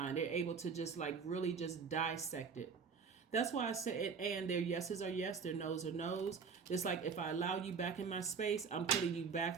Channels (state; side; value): quieter; left; 5.7 dB